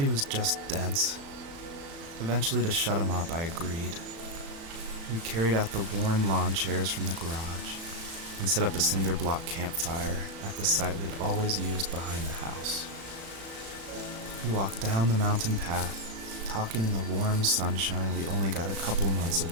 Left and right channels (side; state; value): left; late; 36 ms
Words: he was just dense. Eventually, to shut him up, I agreed. We carried out the worn lawn chairs from the garage and set up a cinder block campfire at the site we'd always used behind the house. We walked down the mountain path, talking in the warm sunshine we only got a couple months of